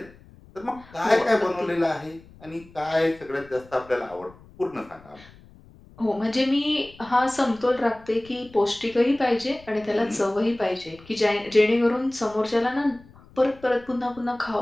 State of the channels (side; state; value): left; noise; rumble, 24 dB below the sound